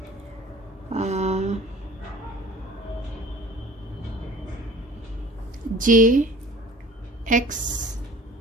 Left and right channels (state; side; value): normal; both; correlation 0.45